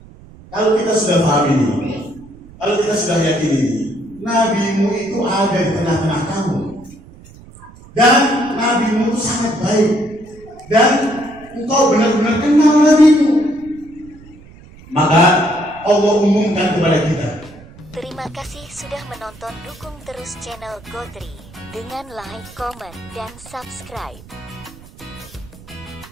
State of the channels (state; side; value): noise; right; rumble, 21 dB below the sound